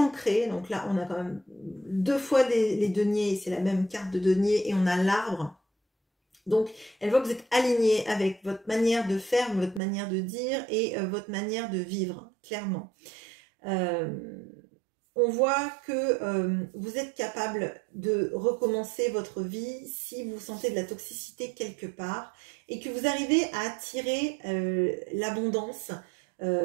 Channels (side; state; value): left; drops out; at 9.8 s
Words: donc là on a quand même 2 fois les deniers, c'est la même carte de denier, et on a l'arbre. Donc elle voit que vous êtes aligné avec votre manière de faire, votre manière de dire et votre manière de vivre, clairement. On voit que vous êtes capable de recommencer votre vie si vous sentez de la toxicité quelque part et que vous arrivez à attirer l'abondance